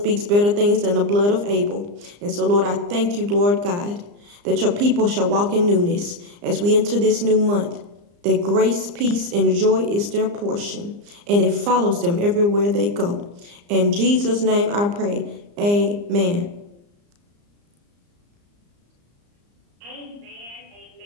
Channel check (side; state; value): left; late; 34 ms